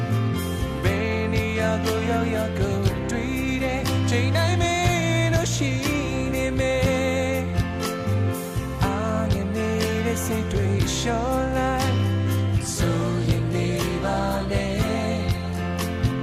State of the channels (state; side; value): identical; both; correlation 1.00